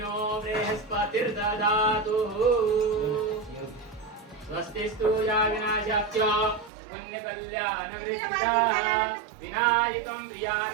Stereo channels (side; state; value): left; drops out; at 6.7 s